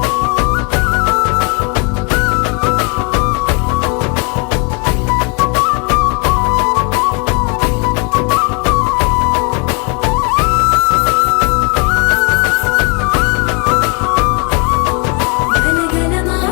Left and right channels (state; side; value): quieter; right; 33.8 dB